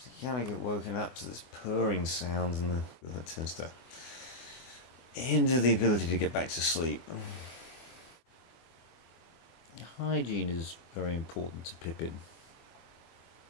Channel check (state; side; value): late; right; 24 ms